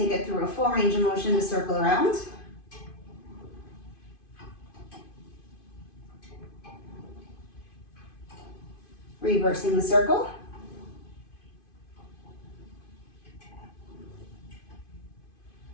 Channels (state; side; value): late; right; 2.5 ms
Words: it through a full range of motion to circle around. Reversing the circle.